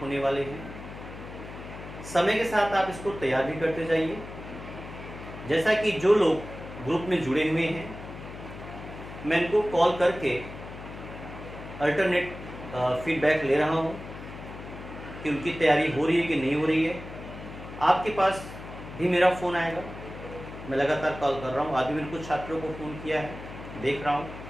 होने वाले हैं। समय के साथ आप इसको तैयार भी करते जाइए। जैसा कि जो लोग ग्रुप में जुड़े हुए हैं, मैं इनको कॉल करके अल्टरनेट फीडबैक ले रहा हूँ कि उनकी तैयारी हो रही है कि नहीं हो रही है। आपके पास भी मेरा फ़ोन आएगा, मैं लगातार कॉल कर रहा हूँ। आज भी मैंने कुछ छात्रों को फ़ोन किया है, देख रहा हूँ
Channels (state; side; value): noise; left; hum, 12 dB below the sound